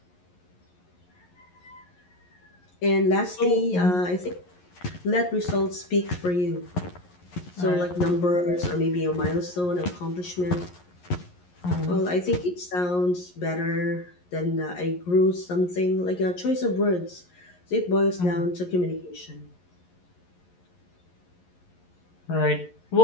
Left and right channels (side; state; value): right; late; 11 ms